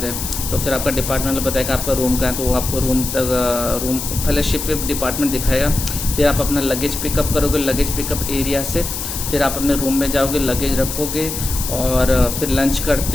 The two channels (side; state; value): left; noise; hiss, 5 dB below the sound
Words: है। तो फिर आपका डिपार्टमेंट बताएगा आपका रूम कहाँ है, तो वो आपको रूम पहले शिप डिपार्टमेंट दिखाएगा। फिर आप अपना लगेज पिकअप करोगे, लगेज पिकअप एरिया से फिर आप अपने रूम में जाओगे, लगेज रखोगे और फिर लंच